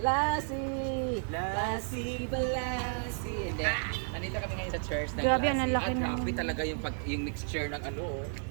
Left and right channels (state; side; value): silent; left; 56 dB below the other